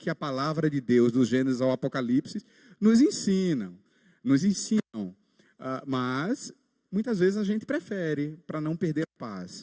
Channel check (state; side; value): identical; both; correlation 1.00